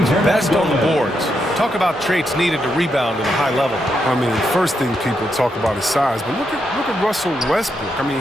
best on the boards. Talk about traits needed to rebound at a high level. I mean, first thing people talk about is size, but look at Russell Westbrook. I mean,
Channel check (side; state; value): both; normal; correlation 0.81